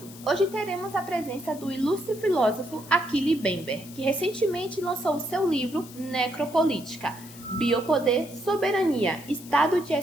Hoje teremos a presença do ilustre filósofo Achille Mbembe, que recentemente lançou o seu livro Necropolítica, Biopoder, Soberania, Estado de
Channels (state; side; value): noise; left; hiss, 18 dB below the sound